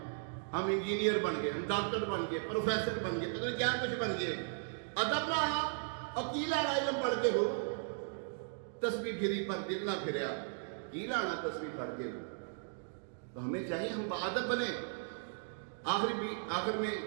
ہم انجینئر بن گئے، ہم ڈاکٹر بن گئے، پروفیسر بن گئے، پتہ نہیں کیا کچھ بن گئے، ادب نہ آیا اور کی لینا علم پڑھ کے ہو۔ تسبیح پھری پر دل نہ پھریا، کی لانا تسبیح پڑھ کے ہو۔ تو ہمیں چاہیے ہم باادب بنے۔ آخر میں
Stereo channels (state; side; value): silent; left; digital silence